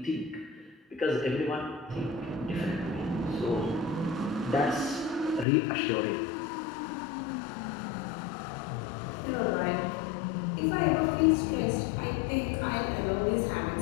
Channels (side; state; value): right; drops out; at 5.5 s